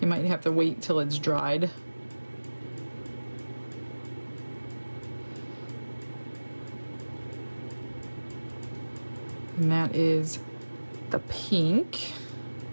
you might have to wait till it's dried. And that is the pink.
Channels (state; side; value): inverted; both; correlation -1.00